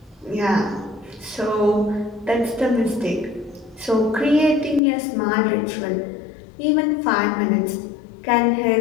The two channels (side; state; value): right; drops out; at 4.8 s